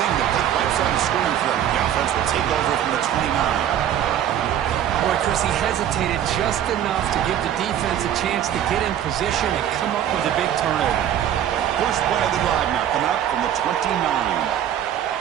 that they wipes out the scoring for him. The offense will take over from the 29. Boy, Chris, he hesitated just enough to give the defense a chance to get in position and come up with a big turnover. First play of the drive now coming up from the 29.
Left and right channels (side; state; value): left; quieter; 10.5 dB